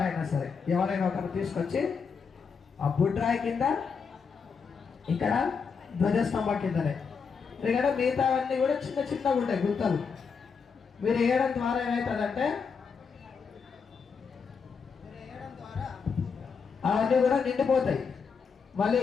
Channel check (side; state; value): right; quieter; 5.7 dB